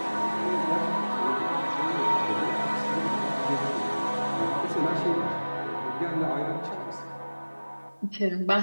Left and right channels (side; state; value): both; inverted; correlation -1.00